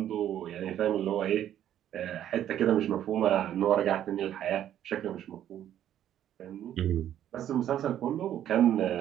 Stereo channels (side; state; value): left; quieter; 11.0 dB